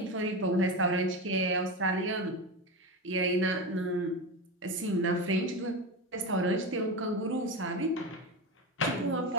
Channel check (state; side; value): normal; both; correlation 0.21